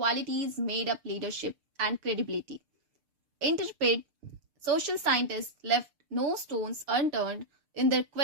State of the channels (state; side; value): late; left; 6.7 ms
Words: made up leadership and credibility. Interpret, social scientists left no stones unturned in their